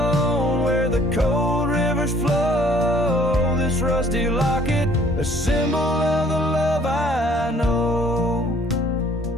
where the cold rivers flow, this rusty locket, a symbol of the love I know.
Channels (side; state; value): both; normal; correlation 0.58